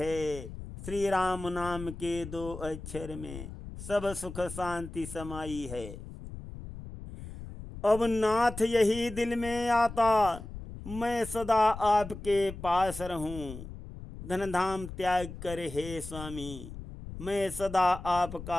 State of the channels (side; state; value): left; noise; rumble, 11 dB below the sound